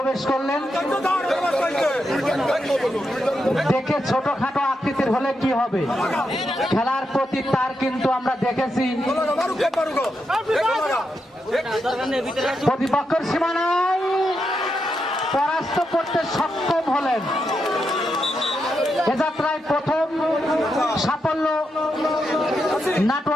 করলেন। দেখে ছোটখাটো আকৃতির হলে কি হবে, খেলার প্রতি তার কিন্তু আমরা দেখেছি প্রতিপক্ষের সীমানায় পরাস্ত করতে সক্ষম হলেন। এ যাত্রায় প্রথম সাফল্য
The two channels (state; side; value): normal; both; correlation 0.84